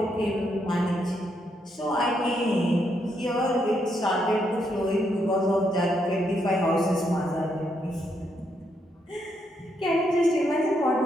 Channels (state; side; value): normal; both; correlation 0.77